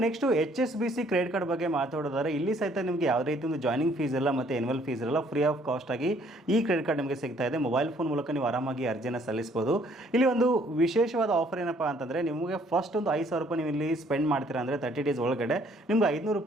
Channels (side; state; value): both; normal; correlation 0.62